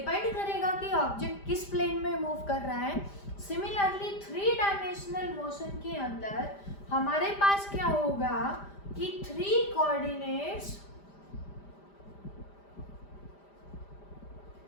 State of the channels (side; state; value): right; late; 5.0 ms